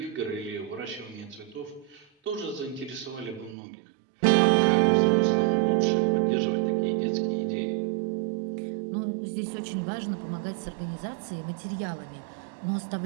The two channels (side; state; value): left; drops out; at 3.6 s